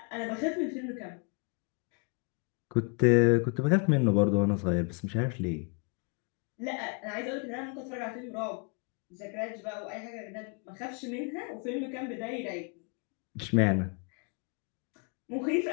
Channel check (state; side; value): quieter; right; 36.1 dB